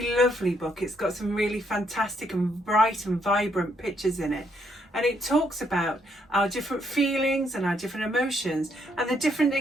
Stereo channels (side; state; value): both; normal; correlation 0.73